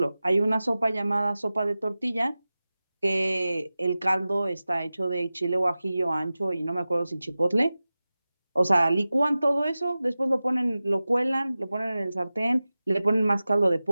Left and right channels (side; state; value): both; inverted; correlation -0.96